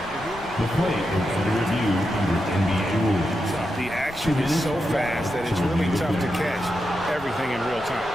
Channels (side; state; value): left; noise; rumble, 18 dB below the sound